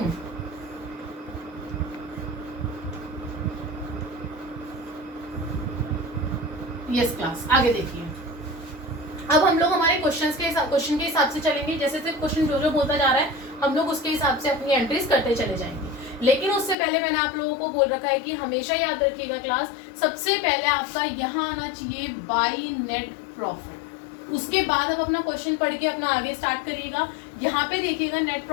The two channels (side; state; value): right; drops out; at 16.8 s